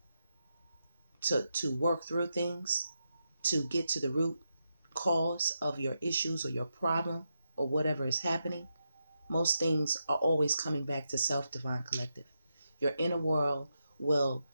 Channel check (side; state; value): both; inverted; correlation -0.86